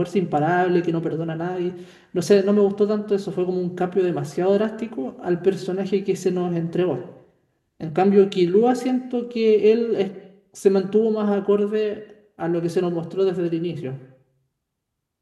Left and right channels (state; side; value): identical; both; correlation 1.00